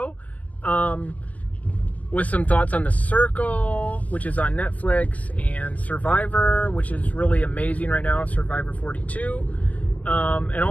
with some thoughts on The Circle, which is on Netflix, and Survivor, which is really amazing right now, Survivor 42. And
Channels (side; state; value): right; late; 0.076 ms